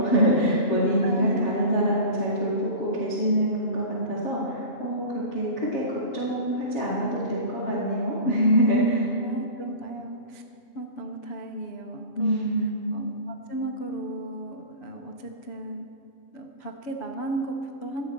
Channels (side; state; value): right; late; 7.1 ms